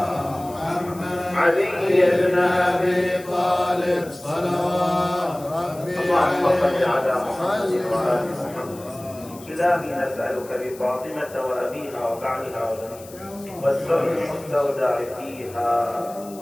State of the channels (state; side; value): noise; left; hiss, 20 dB below the sound